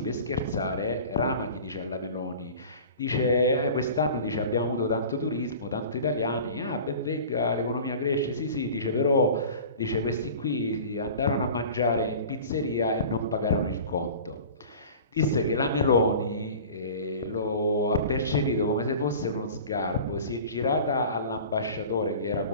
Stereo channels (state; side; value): inverted; both; correlation -0.39